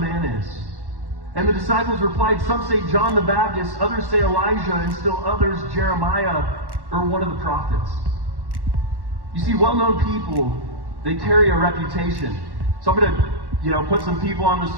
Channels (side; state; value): left; late; 1.1 ms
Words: Man is?" And the disciples replied, "Some say John the Baptist, others say Elijah, and still others Jeremiah or one of the prophets." You see, well-known people, they carry a reputation. So I'm going to, put some people on the